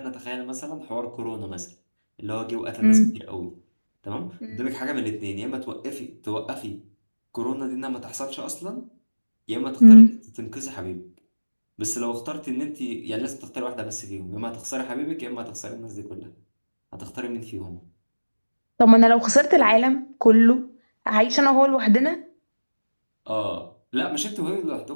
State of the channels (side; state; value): both; inverted; correlation -1.00